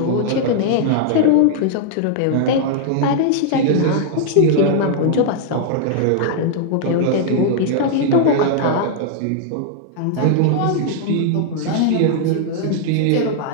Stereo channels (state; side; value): different; both; correlation -0.01